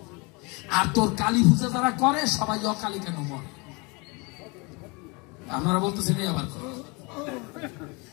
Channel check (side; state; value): right; quieter; 28.7 dB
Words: আর তোর কালী পূজা যারা করে সবাই অকালী কেন মরে? আপনারা বলতেছেন আবার